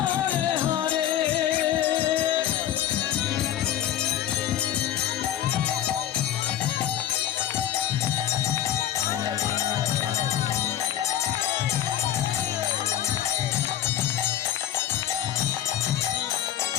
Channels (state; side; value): quieter; right; 11.5 dB